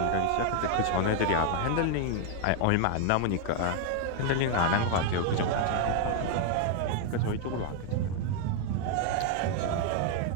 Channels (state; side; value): different; both; correlation 0.00